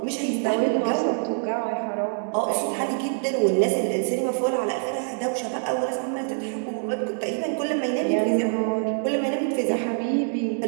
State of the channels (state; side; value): silent; left; digital silence